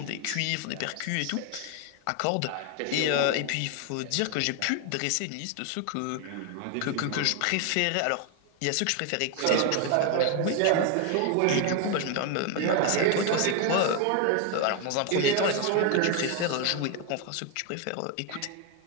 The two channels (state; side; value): different; both; correlation 0.01